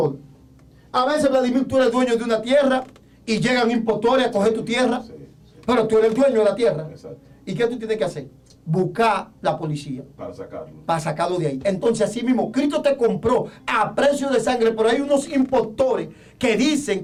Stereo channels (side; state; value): both; identical; correlation 1.00